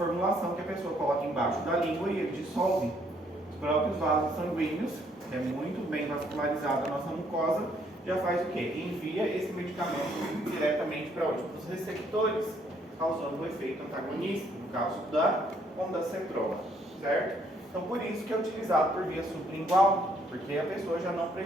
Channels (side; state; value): both; normal; correlation 0.67